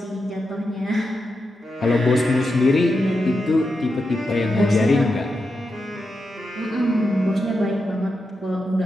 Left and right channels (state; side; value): normal; both; correlation 0.87